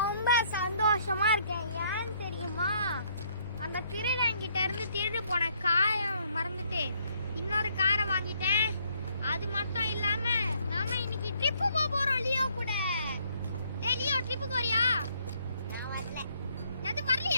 சந்தோஷமா இருக்கேன். ஏன்னு தெரியுமா? அந்த திருடங்கிட்ட இருந்து திருடு போன காரை மறந்துட்டு இன்னொரு காரை வாங்கிட்டேன். அது மட்டும் இல்லாம நாம இன்னைக்கு ட்ரிப்பு போறோம் லியோ கூட. டேய் லியோ, ட்ரிப்புக்கு வரியா? நான் வரல. எது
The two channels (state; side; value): inverted; both; correlation -0.67